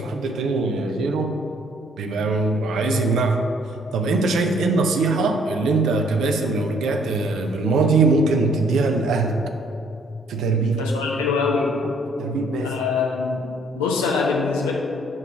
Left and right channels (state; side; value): normal; both; correlation 0.62